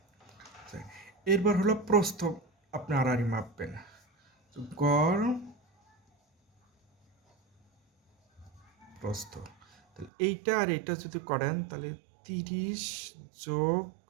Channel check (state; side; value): drops out; left; at 10.1 s